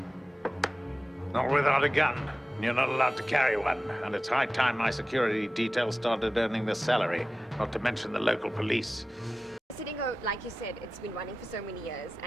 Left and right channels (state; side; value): normal; both; correlation 0.95